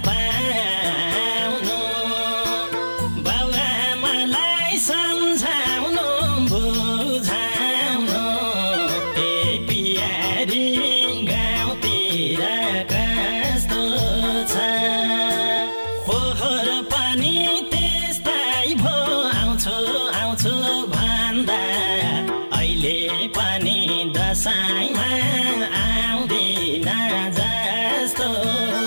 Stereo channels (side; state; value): both; inverted; correlation -1.00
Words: पाउनु बाबुआमालाई सम्झाउनु बुझाउनु ए पियारी गाउँतिर कस्तो छ पोहोर पनि त्यस्तै भो आउँछु आउँछु भन्दा अहिले पनि दशैँमा आउँदिन जस्तो